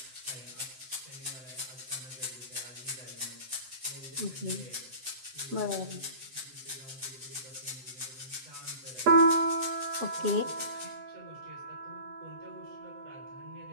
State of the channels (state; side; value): late; left; 7.8 ms